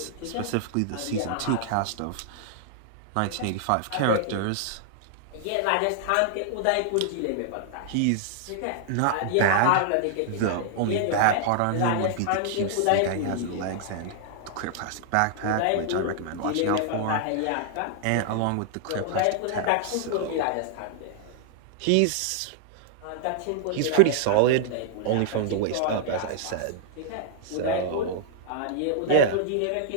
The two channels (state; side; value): different; both; correlation -0.01